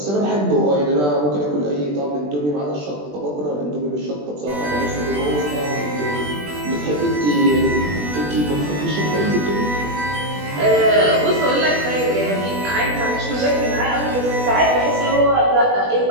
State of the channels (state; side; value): late; left; 20 ms